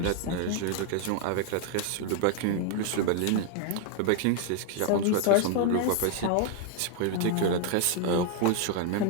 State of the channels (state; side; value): different; both; correlation 0.00